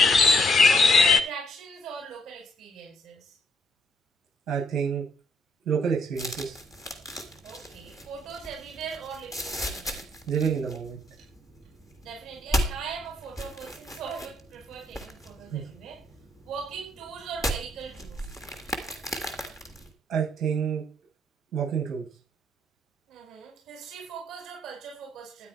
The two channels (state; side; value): normal; both; correlation 0.69